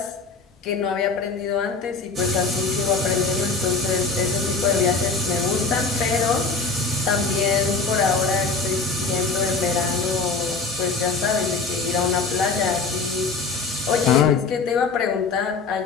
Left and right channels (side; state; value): right; quieter; 4.2 dB